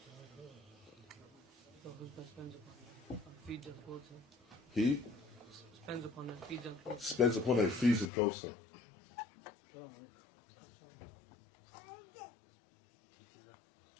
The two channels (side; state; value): right; drops out; at 8.1 s